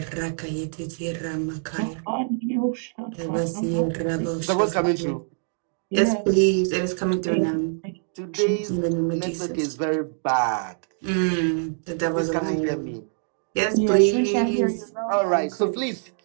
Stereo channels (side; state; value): left; silent; digital silence